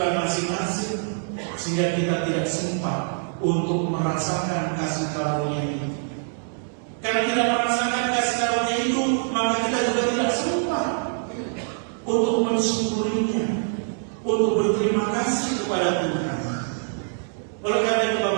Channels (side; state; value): left; silent; digital silence